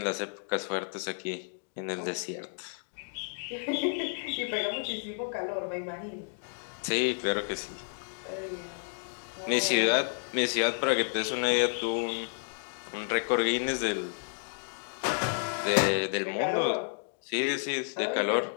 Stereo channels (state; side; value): silent; right; digital silence